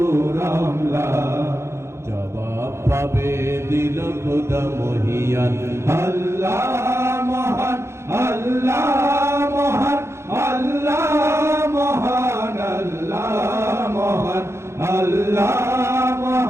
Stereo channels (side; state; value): left; late; 0.13 ms